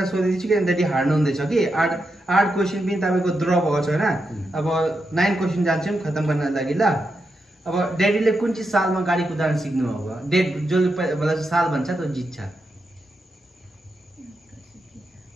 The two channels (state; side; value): normal; both; correlation 0.86